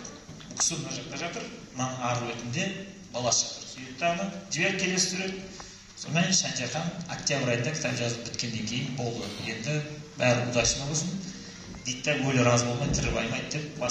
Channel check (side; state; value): both; identical; correlation 1.00